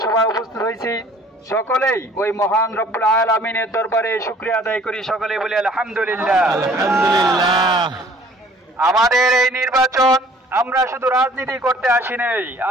উপস্থিত হয়েছি, সকলেই ওই মহান রব্বুল আলামিনের দরবারে শুকরিয়া আদায় করি। সকলে বলি আলহামদুলিল্লাহ। আমাদের এই নির্বাচন আমরা শুধু রাজনীতি করতে আসি নাই,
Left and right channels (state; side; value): normal; both; correlation 0.54